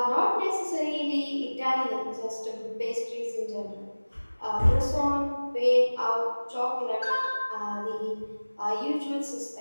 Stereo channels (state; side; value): inverted; both; correlation -1.00